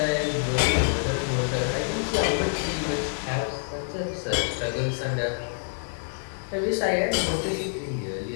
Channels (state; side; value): silent; right; digital silence